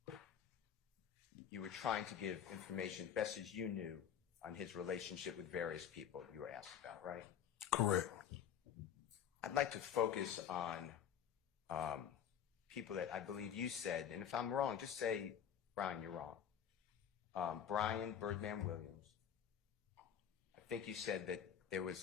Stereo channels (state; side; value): quieter; right; 8.9 dB